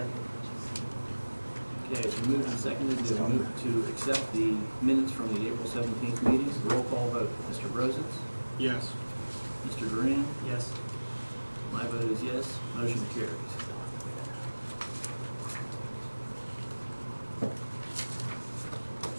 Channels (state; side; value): inverted; both; correlation -1.00